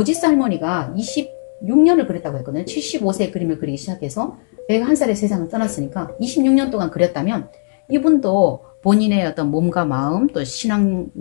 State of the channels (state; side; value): silent; right; digital silence